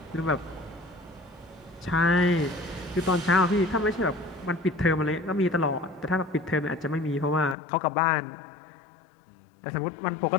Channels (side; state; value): right; drops out; at 7.6 s